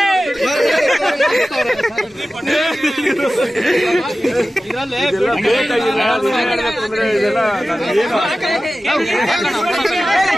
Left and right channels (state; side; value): normal; both; correlation 0.95